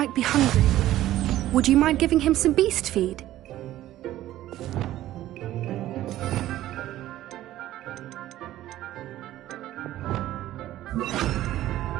be hungry. Would you mind giving him some beast feed?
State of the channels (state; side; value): quieter; left; 14.2 dB